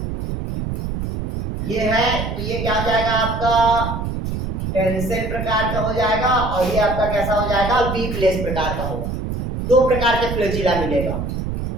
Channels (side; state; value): right; noise; rumble, 4 dB below the sound